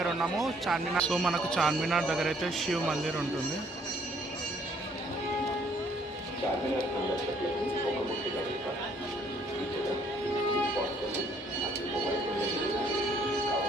ఉన్నాము. మనకు చార్మినార్ దగ్గర అయితే శివ్ మందిర్ ఉంటుంది.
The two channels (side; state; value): both; normal; correlation 0.64